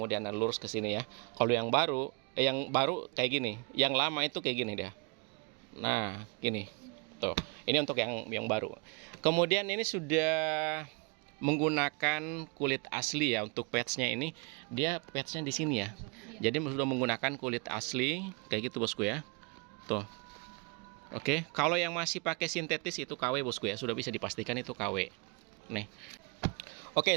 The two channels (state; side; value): quieter; left; 30.6 dB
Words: lurus ke sini ya. Kalau yang baru kayak gini. Yang lama itu kayak gini dia. Nah, gini. Tuh. Ini untuk yang baru. Kemudian ini sudah menggunakan kulit asli ya untuk patchnya ini. Dia patchnya di sini ya. Jadi sudah menggunakan kulit asli kayak gitu bosku ya. Tuh. Oke, kalau yang masih pakai sintetis itu KW bosku ya. Sudah bisa dipastikan itu KW. Nih.